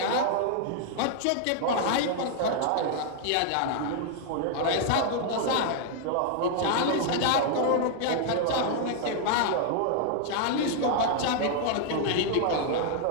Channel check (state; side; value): different; both; correlation 0.00